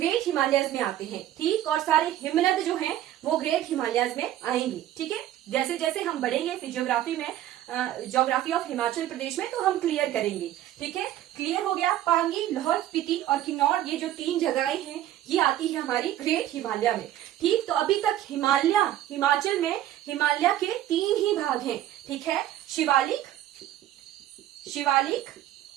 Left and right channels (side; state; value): left; quieter; 12.8 dB